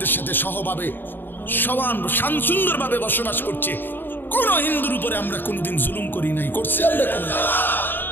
সাথে সহভাবে সমান সুন্দরভাবে বসবাস করছে। কোন হিন্দুর উপরে আমরা কোনোদিন জুলুম করি নাই, করছি আমরা কোন।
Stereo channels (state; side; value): late; right; 0.094 ms